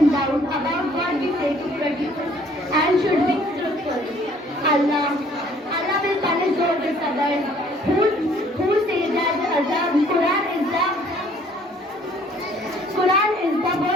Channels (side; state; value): both; normal; correlation 0.59